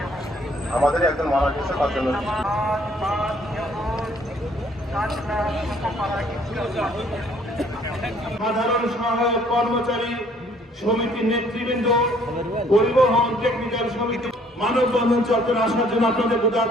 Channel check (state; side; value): normal; both; correlation 0.61